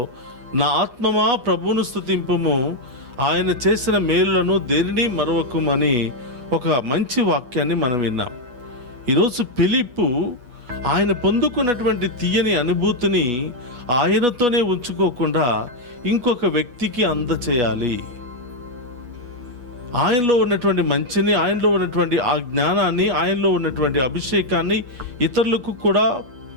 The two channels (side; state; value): left; late; 8.3 ms